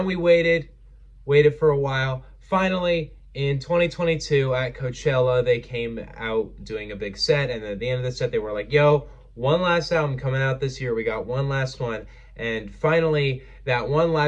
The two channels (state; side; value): identical; both; correlation 1.00